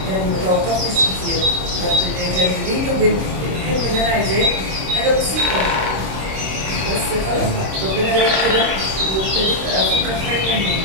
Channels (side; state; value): left; late; 26 ms